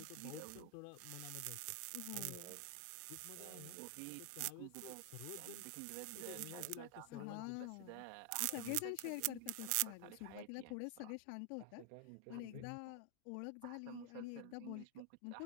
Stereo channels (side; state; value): both; different; correlation 0.00